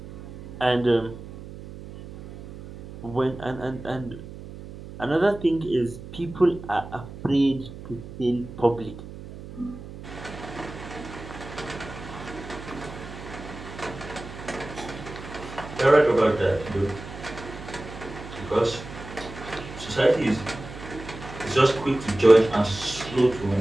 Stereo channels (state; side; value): noise; right; hum, 13 dB below the sound